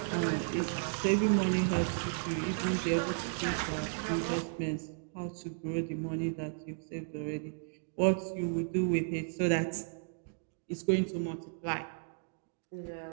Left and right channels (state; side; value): silent; left; digital silence